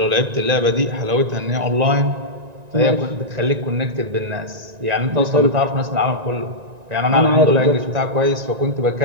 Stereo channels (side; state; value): left; late; 1.9 ms